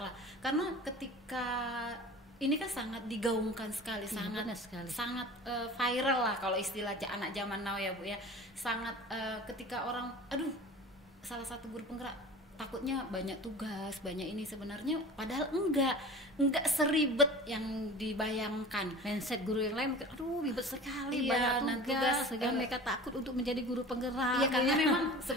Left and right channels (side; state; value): both; normal; correlation 0.39